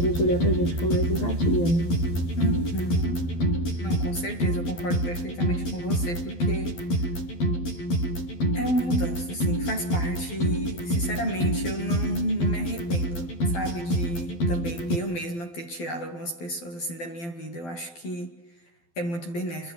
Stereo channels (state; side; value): late; right; 12 ms